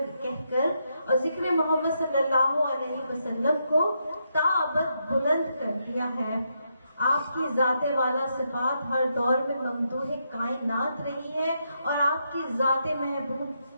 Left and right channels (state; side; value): inverted; both; correlation -0.81